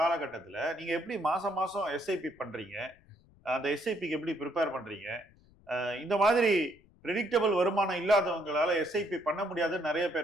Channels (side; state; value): left; noise; rumble, 29 dB below the sound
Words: நீங்க எப்படி மாசம் மாசம் எஸ்ஐபி பண்றீங்க? அந்த எஸ்ஐபிக்கு எப்படி ப்ரிப்பேர் பண்றீங்க? இந்த மாதிரி ப்ரெடிக்டபிள் வருமானம் இல்லாதவங்களால எஸ்ஐபி பண்ண முடியாதுன்னு நிறைய